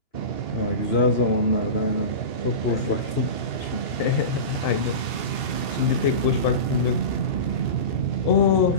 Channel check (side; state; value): right; late; 2.7 ms